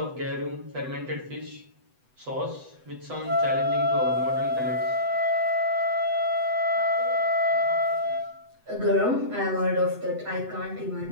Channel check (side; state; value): left; late; 7.9 ms